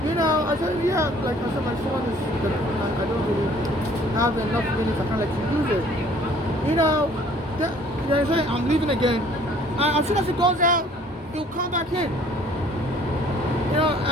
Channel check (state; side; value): normal; both; correlation 0.56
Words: I said, yeah, like I said, my phone is, I don't really have enough minutes, I can't let you use it. They say, I'm leaving again. And as soon as it goes out, he'll come back in.